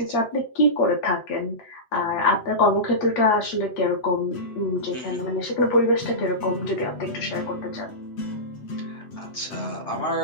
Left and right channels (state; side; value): late; right; 8.1 ms